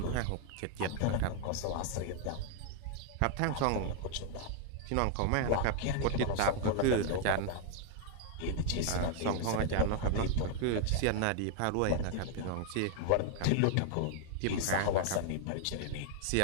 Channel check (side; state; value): both; different; correlation 0.00